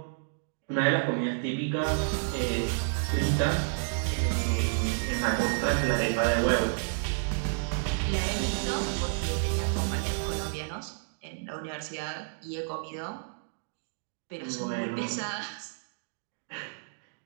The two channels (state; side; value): silent; left; digital silence